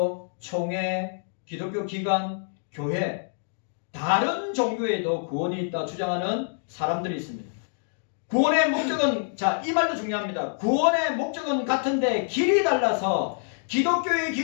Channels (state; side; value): silent; right; digital silence